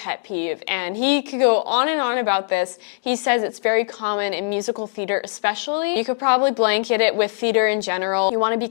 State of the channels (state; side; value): silent; right; digital silence